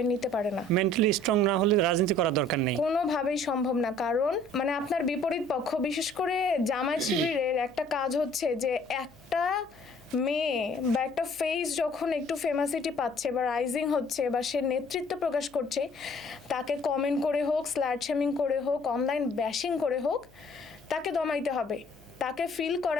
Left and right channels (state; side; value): noise; left; hum, 29 dB below the sound